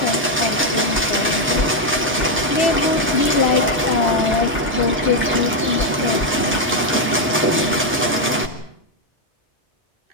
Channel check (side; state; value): both; normal; correlation 0.02